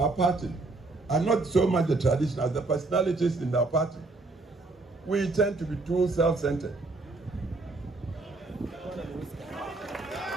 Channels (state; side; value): quieter; left; 3.3 dB